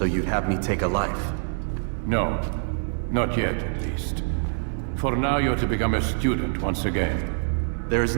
you'd have me take a life? No. Not yet, at least. For now, you're to become a student once again. There is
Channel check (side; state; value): left; silent; 62 dB below the other